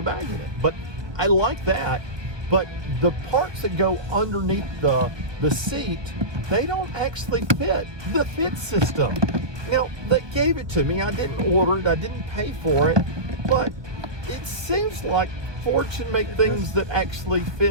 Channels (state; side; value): late; left; 1.2 ms